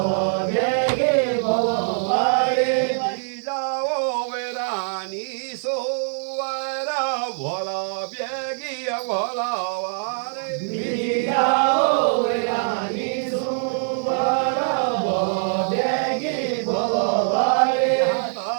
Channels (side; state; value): left; silent; 63 dB below the other